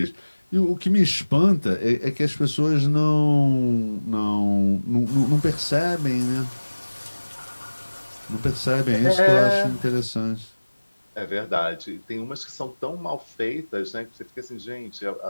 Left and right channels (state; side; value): inverted; both; correlation -1.00